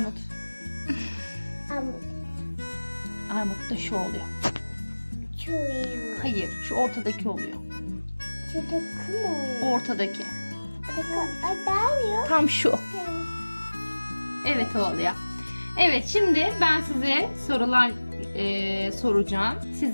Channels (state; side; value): inverted; both; correlation -1.00